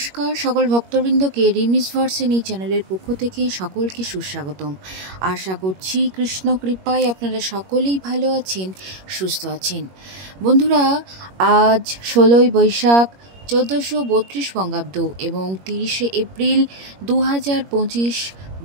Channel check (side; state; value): left; late; 21 ms